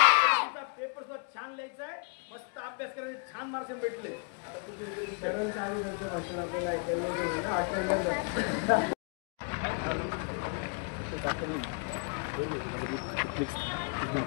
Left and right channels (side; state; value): right; quieter; 38.8 dB